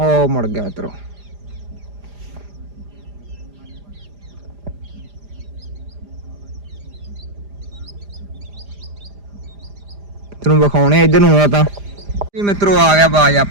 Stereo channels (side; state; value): left; late; 4.9 ms